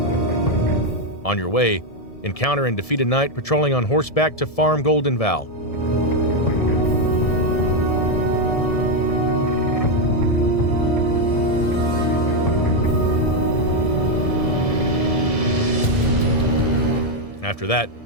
On your way, encounter and defeat a knight patrolling on horseback to farm Golden Vow. After that,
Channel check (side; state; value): right; late; 1.7 ms